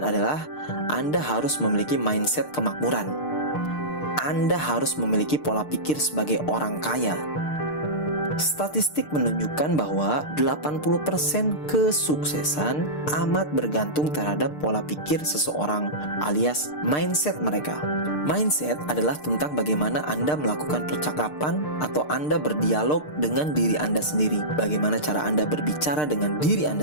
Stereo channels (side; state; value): right; late; 6.6 ms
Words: adalah Anda harus memiliki mindset kemakmuran. Anda harus memiliki pola pikir sebagai orang kaya. Statistik menunjukkan bahwa 80% kesuksesan amat bergantung terhadap pola pikir seseorang alias mindset mereka. Mindset adalah tentang bagaimana Anda melakukan percakapan atau Anda berdialog dengan diri Anda sendiri. Bagaimana cara Anda berbicara dengan diri